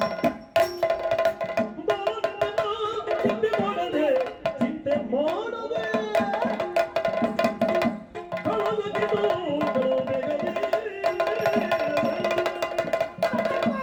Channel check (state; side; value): identical; both; correlation 1.00